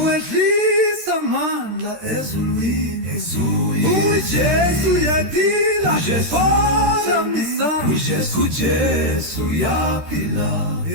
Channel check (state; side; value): late; left; 13 ms